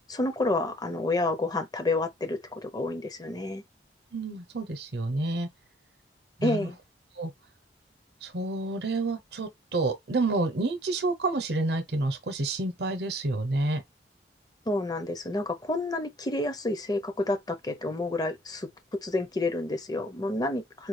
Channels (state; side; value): normal; both; correlation 0.58